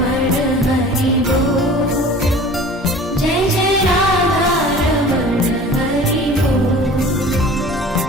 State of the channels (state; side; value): normal; both; correlation 0.43